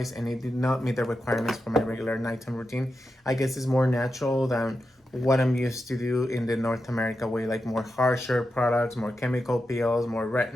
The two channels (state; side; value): normal; both; correlation 0.88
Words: and it did not meet the requirements for my regular nighttime routine. I guess it's more natural than what I'm used to do in the North America way, like more harsher products, more chemical peels, more